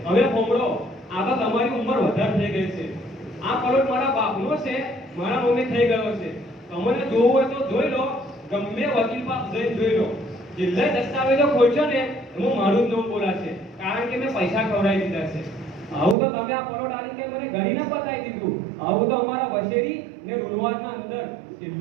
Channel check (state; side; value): drops out; left; at 16.2 s